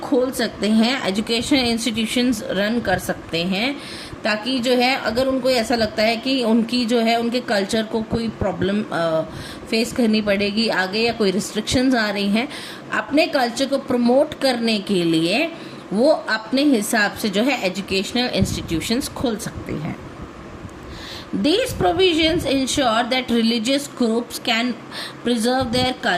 सकते हैं, एजुकेशन इंस्टीट्यूशंस रन कर सकते हैं, ताकि जो है अगर उनको ऐसा लगता है कि उनकी जो है उनके कल्चर को कोई प्रॉब्लम फेस करनी पड़ेगी आगे या कोई रिस्ट्रिक्शंस आ रही हैं, अपने कल्चर को प्रमोट करने के लिए वो अपने हिसाब से जो है एजुकेशनल इंस्टीट्यूशंस खोल सकते हैं। These provisions ensure that religious groups can preserve their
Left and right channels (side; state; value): both; identical; correlation 1.00